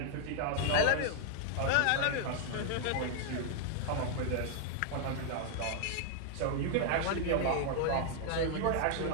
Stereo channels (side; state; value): both; different; correlation 0.00